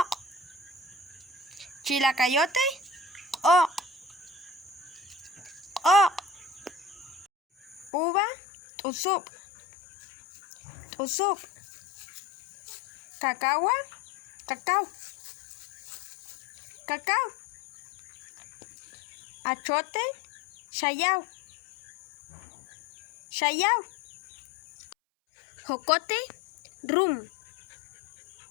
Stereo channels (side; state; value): right; drops out; at 7.9 s